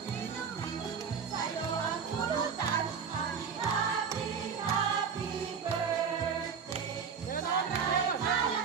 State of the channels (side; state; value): left; quieter; 6.4 dB